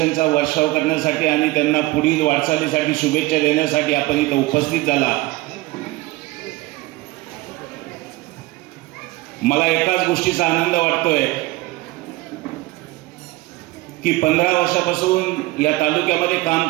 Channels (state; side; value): quieter; left; 19.8 dB